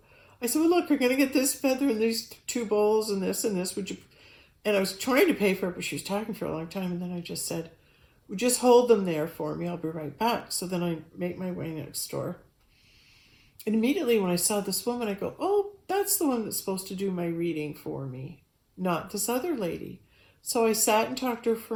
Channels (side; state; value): both; identical; correlation 1.00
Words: I said, well, look, we're going to get this feather and these 2 bowls and this, would you? And I was trying to pay for it, but she was talking for a long time, and then I just said, well, just hold them there for me, I'll be right back. So then I make my way next door. And immediately when I saw this woman, I go, oh, that's the one that's supposed to do my reading for me, not this other lady. So I sat and talked to her